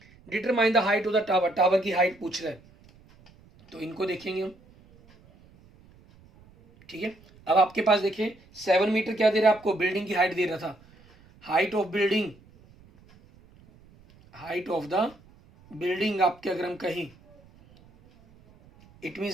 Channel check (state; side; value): noise; right; rumble, 27 dB below the sound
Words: determine the height of the tower, tower की हाइट पूछ रहा है, तो इनको देखेंगे हम। ठीक है, अब आपके पास देखिए 7 मीटर क्या दे रहा है आपको, बिल्डिंग की हाइट दे रहा था, height of building, height of the building आपके अगर हम कहें, इट